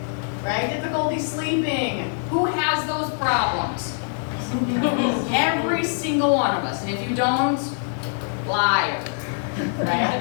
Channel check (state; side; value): silent; right; 63 dB below the other